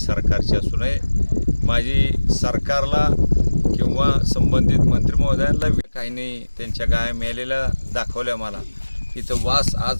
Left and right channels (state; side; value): inverted; both; correlation -1.00